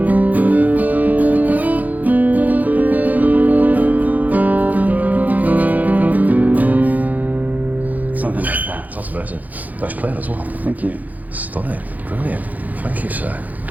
Nice playing as well. Thank you. Stunning. Brilliant. Thank you, sir.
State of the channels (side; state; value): left; late; 0.080 ms